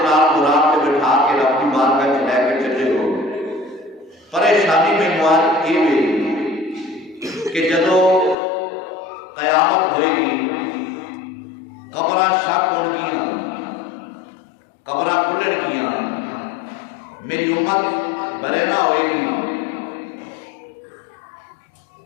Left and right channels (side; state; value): right; drops out; at 8.3 s